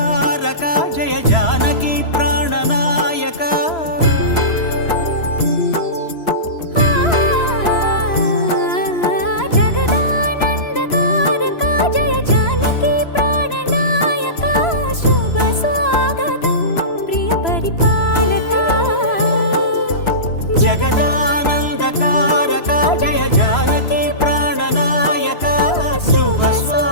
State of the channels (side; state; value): right; late; 3.0 ms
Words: జయ జానకి ప్రాణనాయక జగదానందకారక జయ జానకి ప్రాణనాయక, శుభ స్వాగతం ప్రియ పరిపాలక. జగదానందకారక జయ జానకి ప్రాణనాయక శుభ